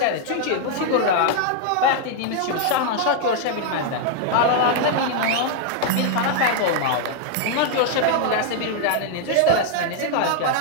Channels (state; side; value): different; both; correlation 0.00